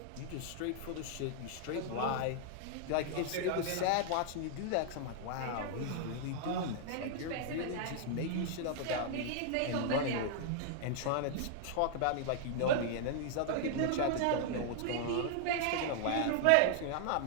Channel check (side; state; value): both; different; correlation 0.00